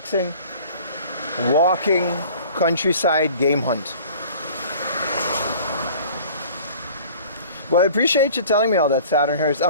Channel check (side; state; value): both; inverted; correlation -0.47